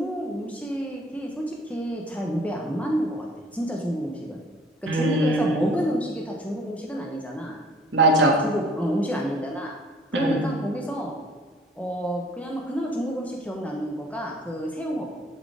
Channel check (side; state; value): both; normal; correlation 0.53